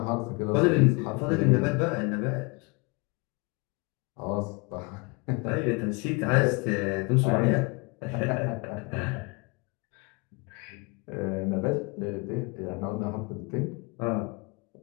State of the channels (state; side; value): quieter; right; 29.2 dB